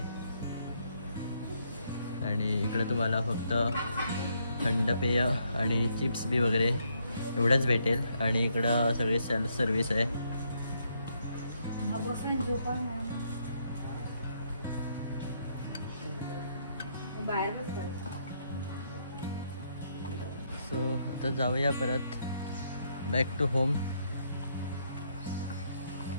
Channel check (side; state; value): both; inverted; correlation -0.74